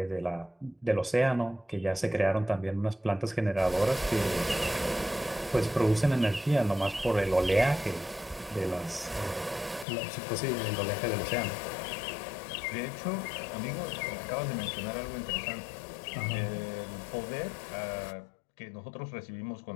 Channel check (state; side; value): drops out; right; at 9.9 s